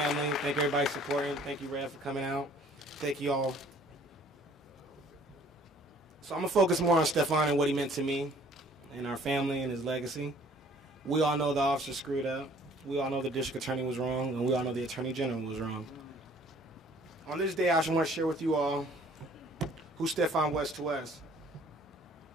Thank you, everybody supporting. Thank you, Rev, for coming out. Thank you all. So I'm going to focus more on Stephon and what he meant to me and our family and his legacy. We all know the officer screwed up. We all know the district attorney was wrong, and we all know the attorney general was wrong. On this day, I just want to share with you all who Stephon was to us.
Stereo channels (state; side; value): normal; both; correlation 0.55